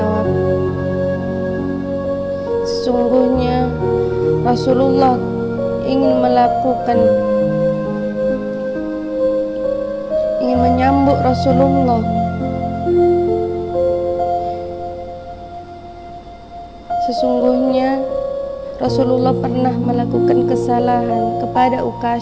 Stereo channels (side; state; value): both; identical; correlation 1.00